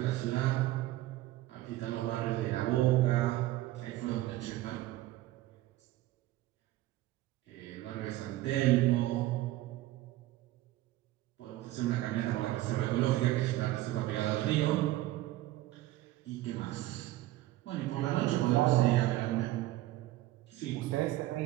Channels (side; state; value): left; quieter; 16.1 dB